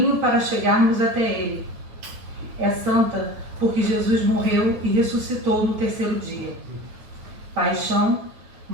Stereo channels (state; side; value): late; left; 9.2 ms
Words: para chegarmos até Ele. É santa porque Jesus morreu e ressuscitou no terceiro dia. Paixão,